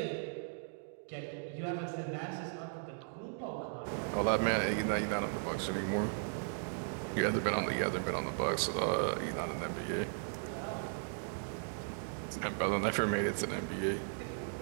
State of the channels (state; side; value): silent; left; digital silence